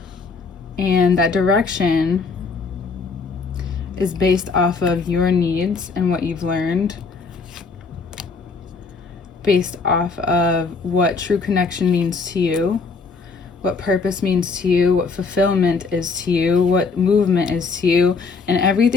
And that direction is based off of your needs and what you've learned, based off of what true connection means to you, what purpose means to you, what fulfillment is to you, what movement is to you, and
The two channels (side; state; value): right; quieter; 4.5 dB